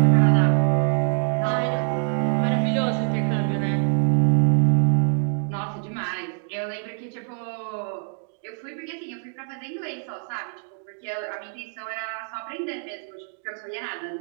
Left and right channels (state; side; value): silent; left; digital silence